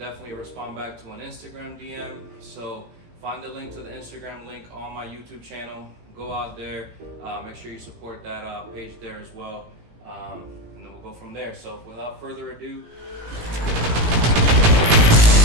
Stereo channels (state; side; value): late; left; 18 ms